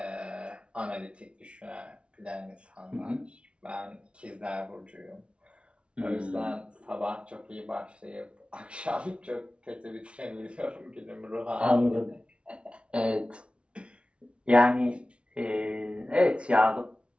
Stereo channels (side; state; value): left; late; 0.059 ms